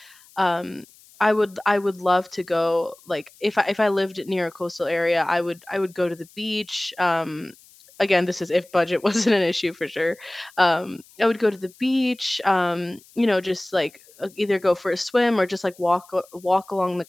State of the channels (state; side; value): noise; left; hiss, 26 dB below the sound